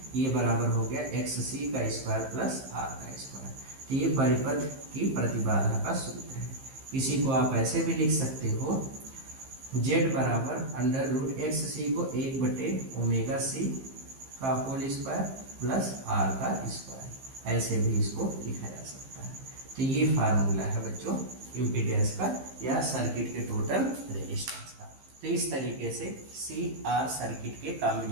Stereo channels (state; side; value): late; left; 15 ms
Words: ये बराबर हो गया एक्स सी का स्क्वायर प्लस आर का स्क्वायर। तो ये परिपथ की प्रतिबाधा का सूत्र है। इसी को आप ऐसे भी लिख सकते हो, जेड बराबर अंडर रूट एक्स सी को 1 बटे ओमेगा सी का होल स्क्वायर प्लस आर का स्क्वायर, ऐसे भी इसको लिखा जा सकता है। तो ये फार्मूला है बच्चों इम्पीडेंस का या सर्किट के टोटल रेजिस्टेंस का। तो इस तरीके से सी आर सर्किट के